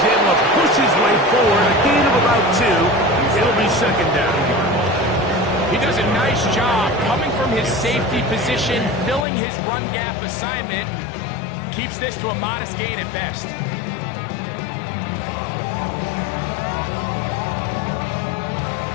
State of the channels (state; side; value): drops out; right; at 9.2 s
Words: able to push his way forward. A gain of about 2. It'll be 2nd down. He does a nice job coming from his safety position, filling his run gap assignment, keeps this to a modest gain at best.